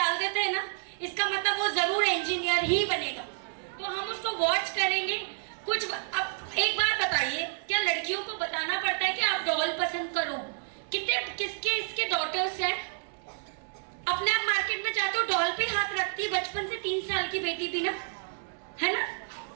देते हैं ना, इसका मतलब वो जरूर इंजीनियर ही बनेगा। तो हम उसको वॉच करेंगे। कुछ अब एक बात बताइए, क्या लड़कियों को बताना पड़ता है कि आप डॉल पसंद करो? किसके इसके डॉटर्स हैं, अपने आप मार्केट में जाते हो डॉल पे हाथ रखती है, बचपन से 3 साल की बेटी भी ना, है ना।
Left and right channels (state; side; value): silent; left; digital silence